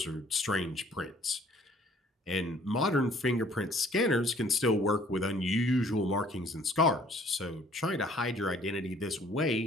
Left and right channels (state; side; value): normal; both; correlation 0.57